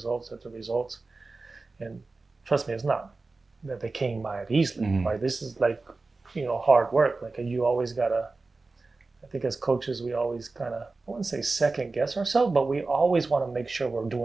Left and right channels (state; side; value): quieter; left; 3.6 dB